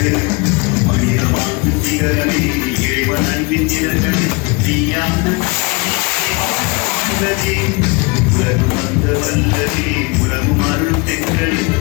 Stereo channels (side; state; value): right; quieter; 28.4 dB